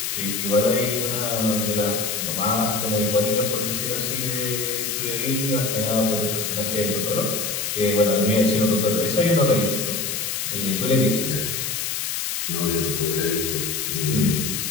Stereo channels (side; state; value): left; noise; hiss, 2 dB below the sound